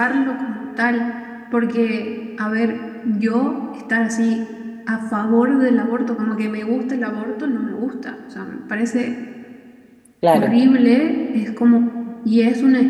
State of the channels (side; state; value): both; identical; correlation 1.00